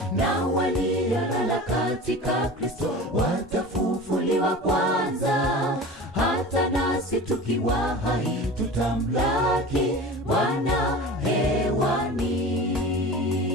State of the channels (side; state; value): both; normal; correlation 0.35